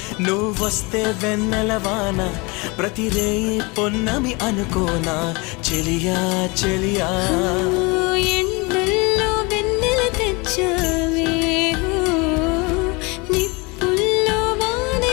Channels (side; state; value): right; quieter; 27.1 dB